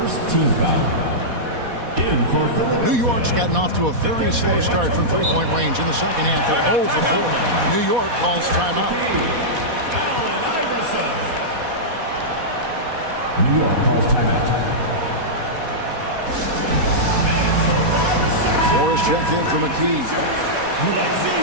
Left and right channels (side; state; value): left; late; 4.1 ms